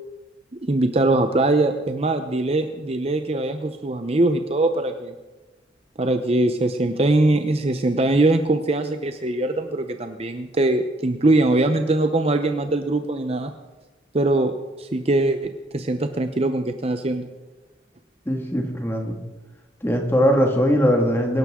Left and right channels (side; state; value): both; normal; correlation 0.65